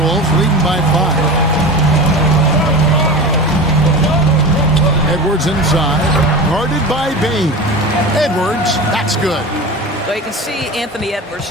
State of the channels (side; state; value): both; normal; correlation 0.30